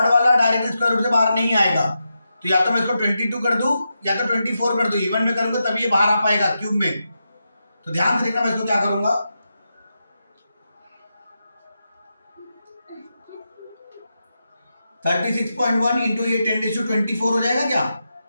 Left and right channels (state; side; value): inverted; both; correlation -0.88